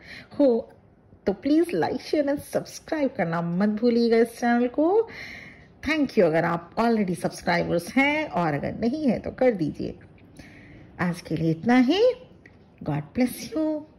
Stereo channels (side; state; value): both; identical; correlation 1.00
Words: तो please like share and subscribe करना मत भूलिएगा इस चैनल को। थैंक यू अगर आप ऑलरेडी सब्सक्राइबर्स हैं, और अगर नहीं है तो कर दीजिए। आज के लिए इतना ही। God bless you